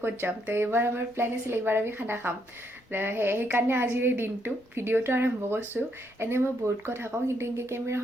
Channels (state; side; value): normal; both; correlation 0.75